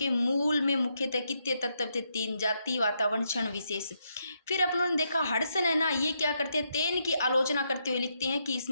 मूल में मुख्यतः कितने तत्व थे? 3: जाति, वातावरण, क्षण विशेष। फिर अपन ने देखा हडसन है ना, ये क्या करते हैं? तेन की आलोचना करते हुए लिखते हैं कि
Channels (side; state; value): both; inverted; correlation -0.79